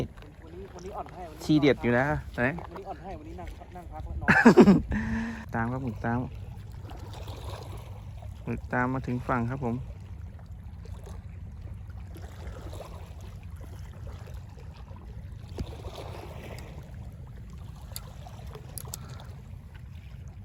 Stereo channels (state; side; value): identical; both; correlation 1.00